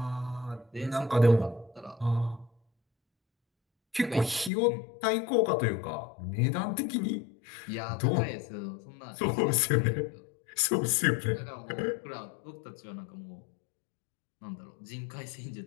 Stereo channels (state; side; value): drops out; right; at 4.5 s